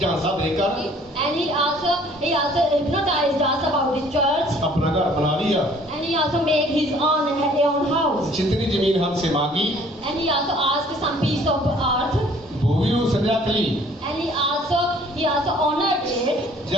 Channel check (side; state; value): both; normal; correlation 0.56